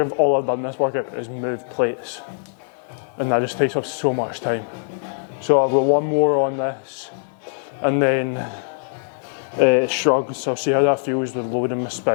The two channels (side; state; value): right; silent; digital silence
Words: like all I've done this workout is move plates, and that just takes up so much time. So I've got one more on this, and then shrugs. So I'll see how that feels with loading my